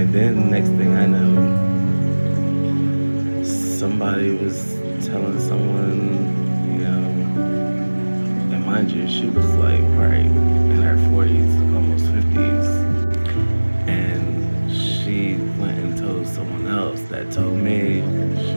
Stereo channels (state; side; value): inverted; both; correlation -1.00